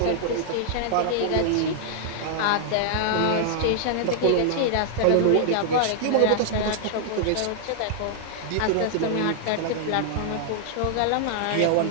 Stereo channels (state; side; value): different; both; correlation -0.01